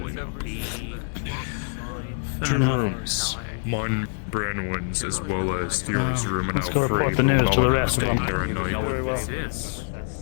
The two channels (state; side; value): silent; right; digital silence